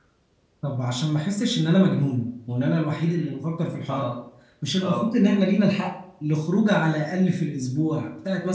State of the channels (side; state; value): both; identical; correlation 1.00